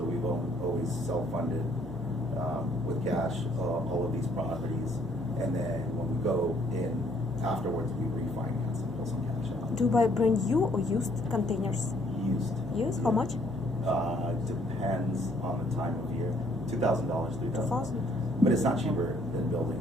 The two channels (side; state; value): both; normal; correlation 0.64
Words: we've always self-funded with cash all of these properties. And then when we go in afterwards, we refinance and pull some cash out. Do you buy brand new or used containers? Used. Used? How much? Depends on the time of year. $2,000, $3,000. 2,000. But it's not cheaper than building.